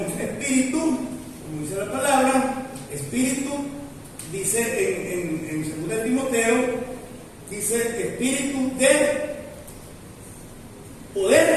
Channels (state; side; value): identical; both; correlation 1.00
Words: espíritu, como dice la palabra, espíritu, dice en 2 Timoteo, dice espíritu de